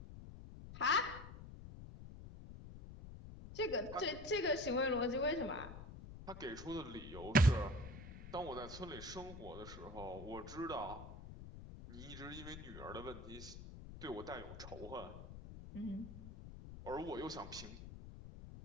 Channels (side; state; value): left; noise; rumble, 12 dB below the sound